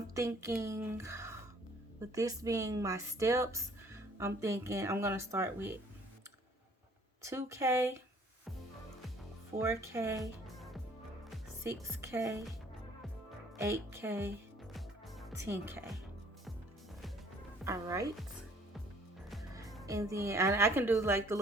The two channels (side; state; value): both; normal; correlation 0.58